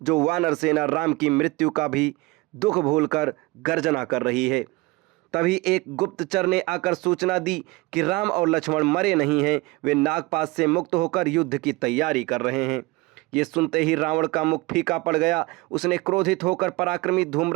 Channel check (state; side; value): quieter; left; 22.5 dB